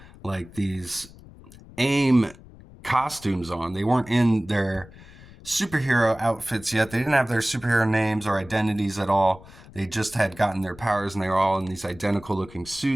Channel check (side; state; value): left; noise; rumble, 21 dB below the sound